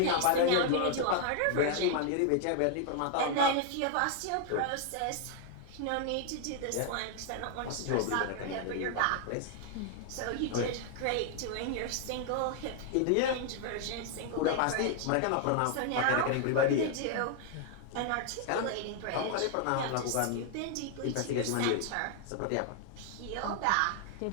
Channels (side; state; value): both; different; correlation 0.00